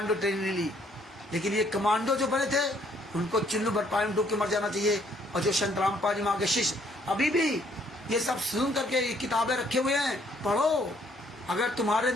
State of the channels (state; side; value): normal; both; correlation 0.65